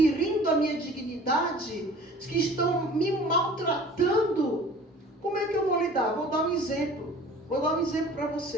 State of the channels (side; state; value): both; normal; correlation 0.46